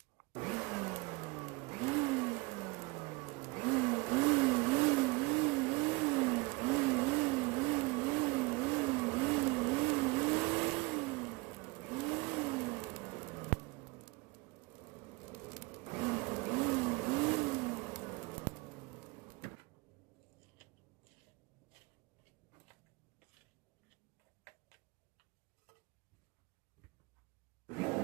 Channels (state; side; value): quieter; left; 25.0 dB